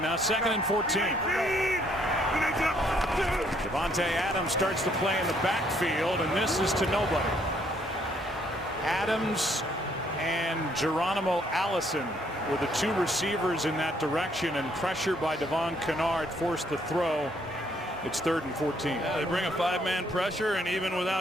now 2nd and 14. Devontae Adams starts to play in the backfield, and this is to nobody. Adams and Geronimo Allison were the 2 receivers in that direction, and pressure by Devon Kennard forced the throw It's 3rd and 14. Yeah, they bring a 5-man pressure, and even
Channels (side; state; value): both; normal; correlation 0.68